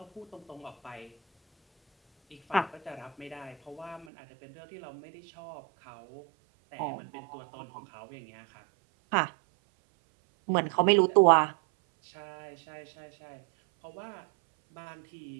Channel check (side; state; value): left; drops out; at 4.0 s